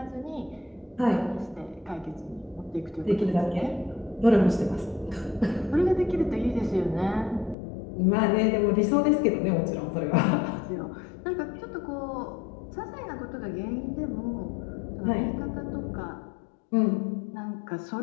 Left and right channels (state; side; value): drops out; right; at 7.6 s